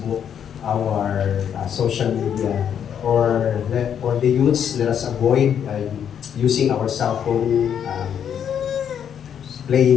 our social media, or for the youths, let us avoid using our cell phone,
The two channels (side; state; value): right; quieter; 8.6 dB